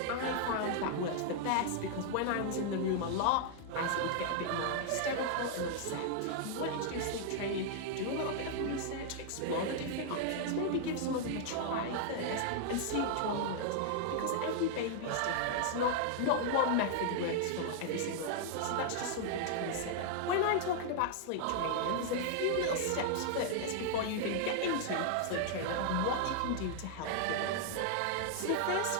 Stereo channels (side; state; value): both; different; correlation -0.01